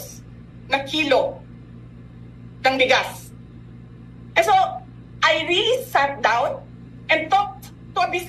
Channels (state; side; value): identical; both; correlation 1.00